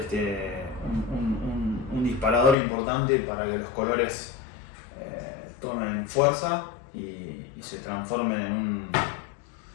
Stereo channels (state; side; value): drops out; right; at 2.6 s